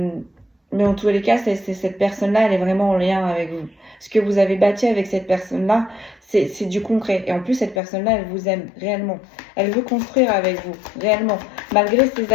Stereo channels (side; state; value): right; drops out; at 7.8 s